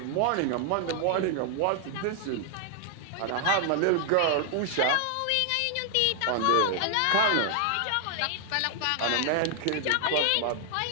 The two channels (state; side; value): different; both; correlation 0.00